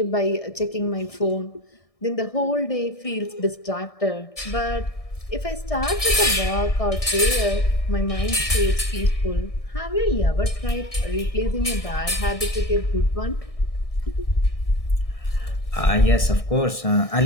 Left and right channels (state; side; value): late; right; 1.6 ms